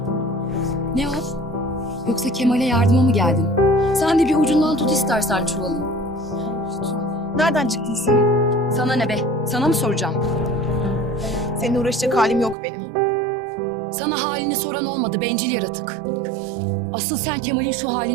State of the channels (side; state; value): left; drops out; at 12.6 s